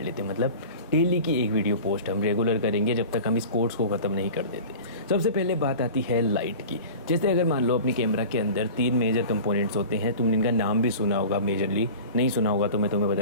मतलब डेली की एक वीडियो पोस्ट हम रेगुलर करेंगे जब तक हम इस कोर्स को ख़त्म नहीं कर देते। सबसे पहले बात आती है लाइट की। जैसे अगर मान लो अपनी कैमरा के अंदर 3 मेजर कंपोनेंट्स होते हैं, तुमने इनका नाम भी सुना होगा, मेजरली नहीं सुना होगा तो मैं तुम्हें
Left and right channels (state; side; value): inverted; both; correlation -0.38